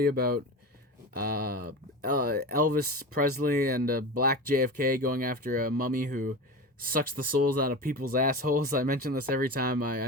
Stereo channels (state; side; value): normal; both; correlation 0.27